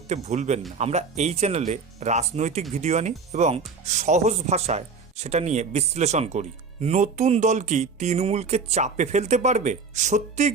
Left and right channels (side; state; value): left; quieter; 4.8 dB